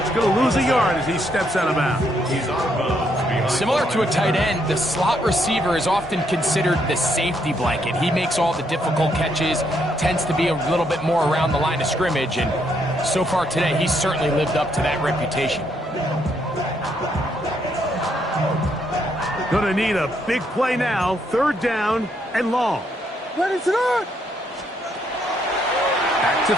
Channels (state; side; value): normal; both; correlation 0.74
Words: Going to lose a yard as he steps out of bounds. Similar to a tight end, the slot receiver is often considered the safety blanket. He makes all the difficult catches, tends to be a little bit more around the line of scrimmage, and so far today, he's certainly lived up to that reputation. Going to need a big play now, 3rd down and long. Ready to run. Back to